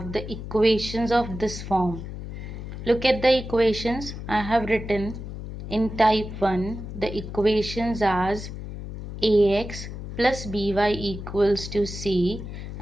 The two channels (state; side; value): noise; left; hum, 9 dB below the sound